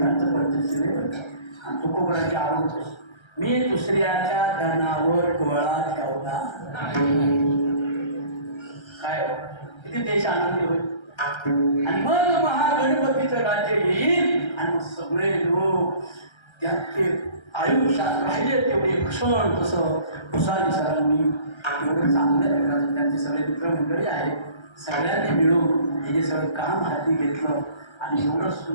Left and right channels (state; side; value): late; right; 1.3 ms